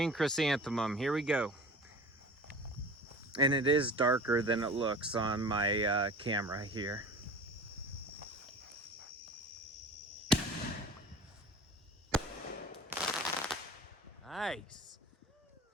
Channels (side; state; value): both; normal; correlation 0.38